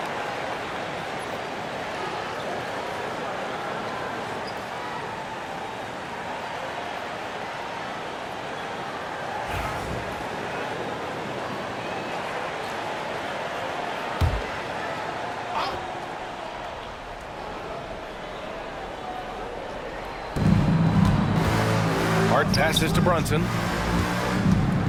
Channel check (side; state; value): both; identical; correlation 1.00